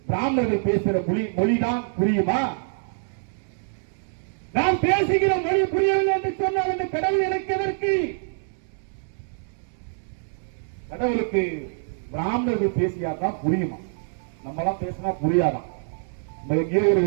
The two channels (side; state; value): left; silent; digital silence